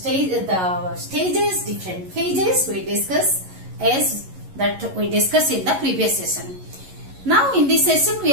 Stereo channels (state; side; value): late; left; 11 ms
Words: different phases we discuss as that we discussed in the previous session. Now in this session we